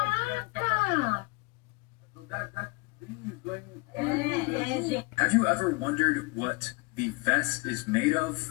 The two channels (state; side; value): quieter; right; 26.2 dB